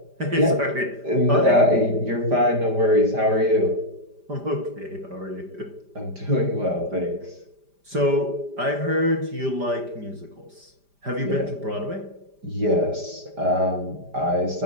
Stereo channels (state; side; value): late; left; 5.0 ms